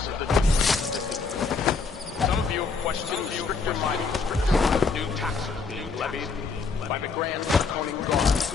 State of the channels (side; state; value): right; quieter; 4.7 dB